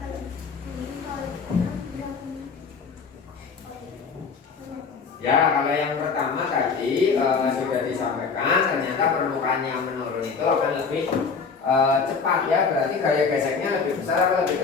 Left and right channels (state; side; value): quieter; right; 5.4 dB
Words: Ya, kalau yang pertama tadi sudah disampaikan, ternyata permukaan yang menurun itu akan lebih cepat ya, berarti gaya geseknya lebih besar atau lebih